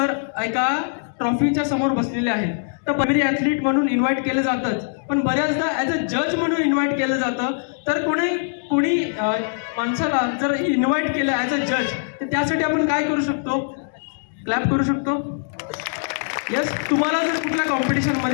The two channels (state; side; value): silent; right; 64 dB below the other